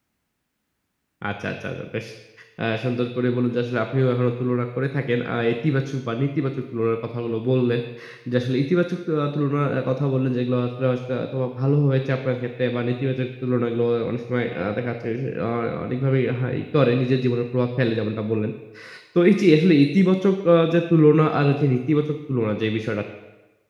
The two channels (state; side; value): identical; both; correlation 1.00